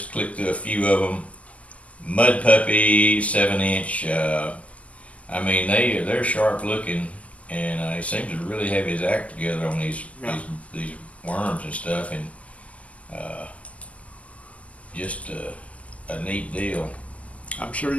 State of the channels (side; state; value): right; late; 0.069 ms